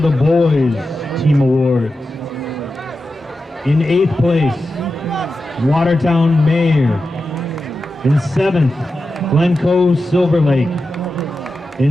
boys team awards. In 8th place, Watertown Mayor. In 7th, Glencoe Silver Lake.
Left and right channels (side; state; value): both; normal; correlation 0.91